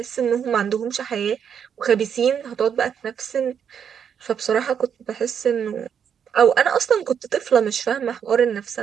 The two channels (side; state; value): left; quieter; 7.9 dB